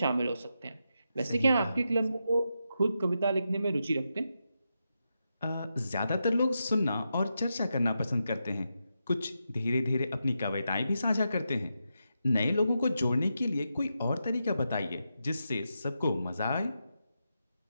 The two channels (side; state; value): both; inverted; correlation -0.86